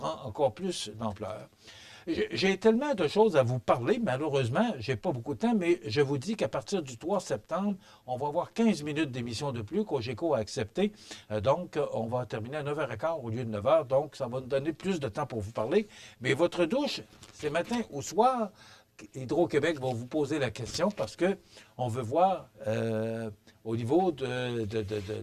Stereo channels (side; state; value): both; identical; correlation 1.00